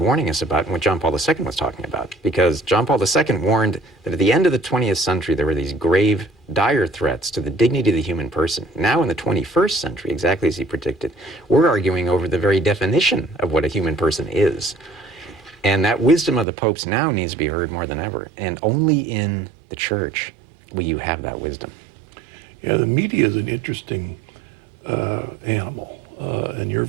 us about and what John Paul II was talking about. Because John Paul II warned that at the end of the 20th century, there were these grave, dire threats to the dignity of the human person. Now in the 21st century, exactly as he predicted, we're arguing over the very definition of what a human person is. And that wisdom of the popes now needs to be heard more than ever. And only in the church will you have that wisdom. Yeah, the media is an interesting animal. And we're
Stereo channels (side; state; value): left; drops out; at 16.4 s